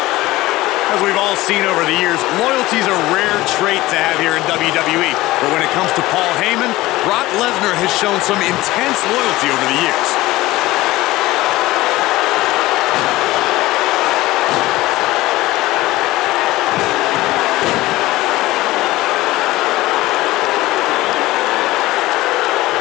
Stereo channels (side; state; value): right; quieter; 18.1 dB